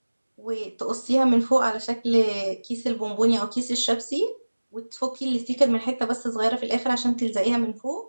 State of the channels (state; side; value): inverted; both; correlation -1.00